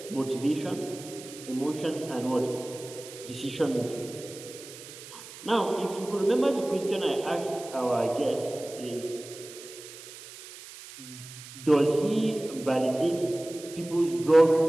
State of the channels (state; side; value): noise; right; hiss, 15 dB below the sound